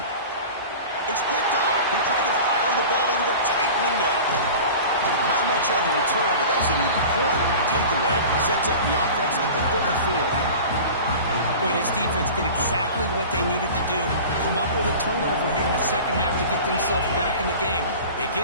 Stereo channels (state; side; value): inverted; both; correlation -0.37